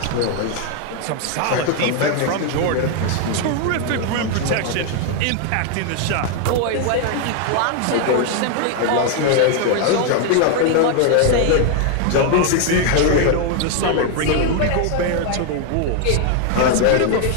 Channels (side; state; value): both; different; correlation 0.01